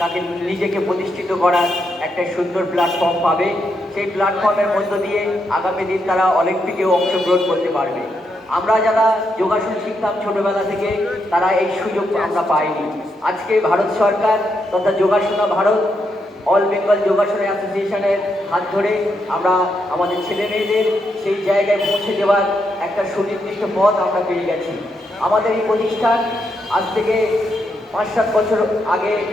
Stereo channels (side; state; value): both; normal; correlation 0.81